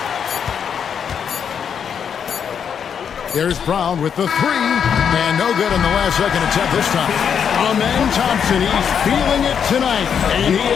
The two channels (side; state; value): right; quieter; 7.6 dB